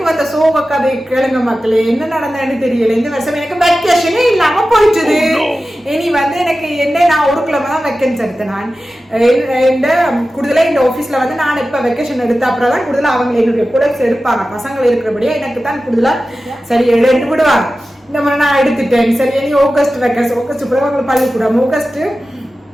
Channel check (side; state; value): both; normal; correlation 0.94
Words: வந்த சோக கதை கேளுங்க மக்களே, என்ன நடந்ததுன்னு தெரியல. இந்த வருஷம் எனக்கு வெக்கேஷனே இல்லாம போயிட்டுது. இனி வந்து எனக்கு என்ன நான் ஒரு கிழமை தான் வெக்கேஷன் எடுத்தேன். நான் இந்த கூடுதலாக இந்த ஆஃபீஸ்ல வந்து நான் இப்போ வெக்கேஷன் எடுத்த அப்புறம் தான் கூடுதலாக அவங்க என்னுடைய ப்ரொடக்ட்ஸ் எடுப்பாங்க. பசங்கள் இருக்கிறபடியா எனக்கு தான் கூடுதலாக சரி எடுத்து விடுவாங்க. இந்த மாதிரி நான் எடுத்துட்டேன். சரி இனி ஆகஸ்ட் வெக்கேஷன், ஆகஸ்ட் பிறகு அவங்களுக்கு பள்ளிக்கூடம். ஆகஸ்ட்